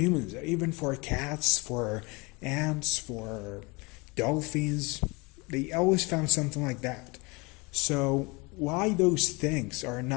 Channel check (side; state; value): right; quieter; 27.0 dB